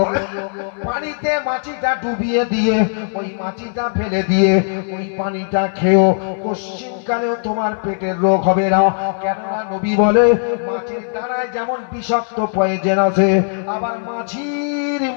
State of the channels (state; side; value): silent; right; 59 dB below the other